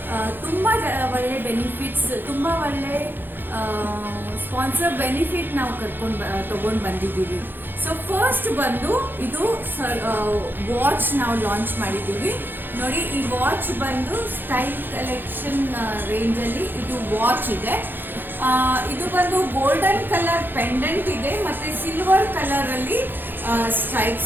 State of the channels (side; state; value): left; late; 0.096 ms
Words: ತುಂಬ ಒಳ್ಳೆ ಬೆನಿಫಿಟ್ಸ್, ತುಂಬ ಒಳ್ಳೆ ಸ್ಪಾನ್ಸರ್ ಬೆನಿಫಿಟ್ ನಾವು ತಗೊಂಡು ಬಂದಿದ್ದೀವಿ. ಸೊ ಫಸ್ಟ್ ಬಂದು ಇದು ವಾಚ್ ನಾವು ಲಾಂಚ್ ಮಾಡಿದ್ದೀವಿ. ನೋಡಿ, ಈ ವಾಚ್ ಬಂದು ಸ್ಟೈಲ್ ಕಲೆಕ್ಷನ್ ರೇಂಜಲ್ಲಿ ಇದು ವಾಚ್ ಇದೆ. ಇದು ಬಂದು ಗೋಲ್ಡನ್ ಕಲರ್ ಪೆಂಡೆಂಟ್ ಇದೆ ಮತ್ತೆ ಸಿಲ್ವರ್ ಕಲರ್ ಅಲ್ಲಿ